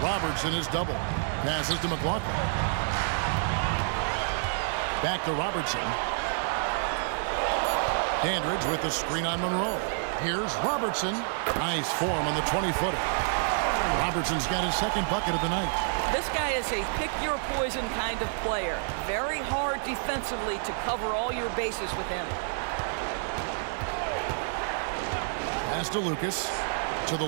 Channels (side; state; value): left; silent; digital silence